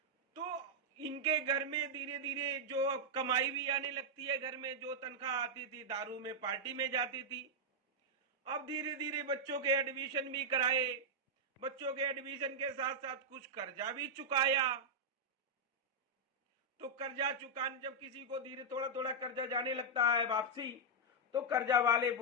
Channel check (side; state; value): both; normal; correlation -0.05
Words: तो इनके घर में धीरे धीरे जो कमाई भी आने लगती है, घर में जो तनख्वाह आती थी दारू में पार्टी में जाती थी। अब धीरे धीरे बच्चों के एडमिशन भी कराए, बच्चों के एडमिशन के साथ साथ कुछ कर्जा भी चुकाया। तो कर्जा चुकाने, जब किसी को धीरे थोड़ा थोड़ा कर्जा जाने लगता है वापसी, तो कर्जा वाले